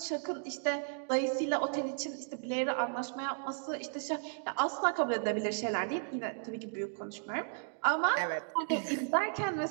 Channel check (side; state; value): left; silent; digital silence